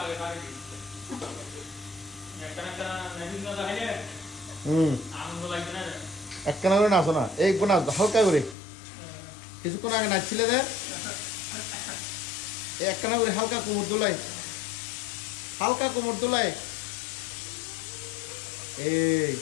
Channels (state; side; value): drops out; right; at 8.6 s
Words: হুম একখানা করে নাচো না, এই একবার নাচো হালকা করে, কিছুক্ষণ আগে নাচছিলে দে, এই একখানা করে হালকা কোমর দোলাই, হালকা কোমর দোলাই, এই